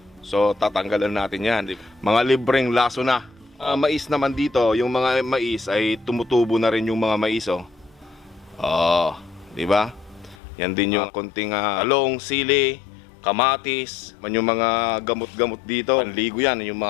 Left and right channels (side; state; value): right; drops out; at 10.4 s